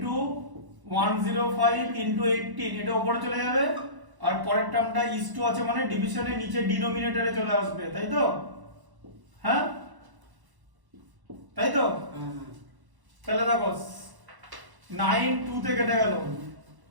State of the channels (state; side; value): late; left; 1.0 ms